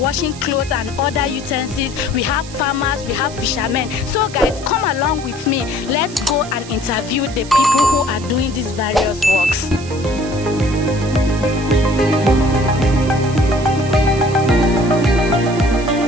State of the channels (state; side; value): noise; right; hiss, 16 dB below the sound